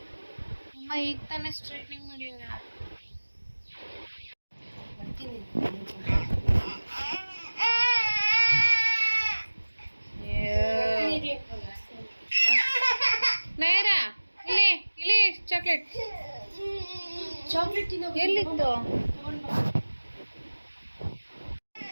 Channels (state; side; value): inverted; both; correlation -1.00